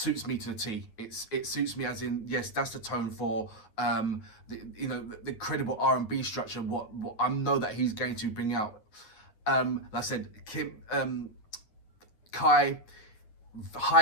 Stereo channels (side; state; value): right; late; 9.5 ms